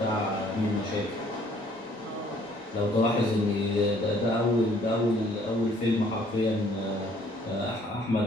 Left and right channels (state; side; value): normal; both; correlation 0.60